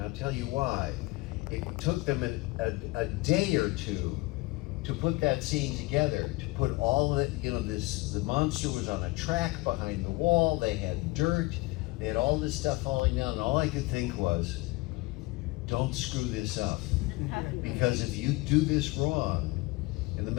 I'll tell you why. It took them a day or two to put that scene together, to put all of it, you know, the monster was on a track behind the wall, they had dirt, they had all this stuff falling down, and all I could think was, don't screw this up. Because if you do this wrong, in the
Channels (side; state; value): right; quieter; 22.5 dB